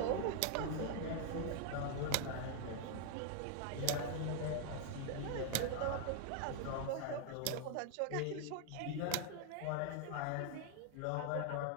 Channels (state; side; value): different; both; correlation 0.00